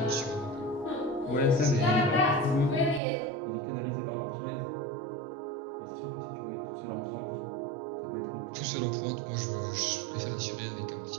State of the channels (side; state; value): left; drops out; at 3.0 s